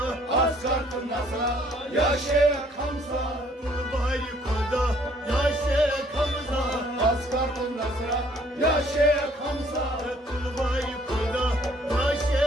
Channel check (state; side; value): normal; both; correlation 0.61